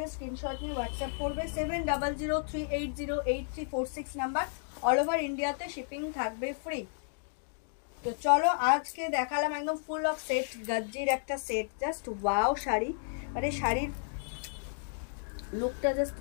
স্ক্রিনশট নিয়ে হোয়াটসঅ্যাপ করবে। 7003808346 নাম্বার। অল ওভার ইন্ডিয়াতে শিপিং থাকবে ফ্রি। তো চলো আজকে দেখালাম একদম ফুল অফ সেট, গাজ্জির একটা সেট, জাস্ট ওয়াও শাড়ি। মানে শাড়ির লুকটা জাস্ট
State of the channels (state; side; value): silent; right; digital silence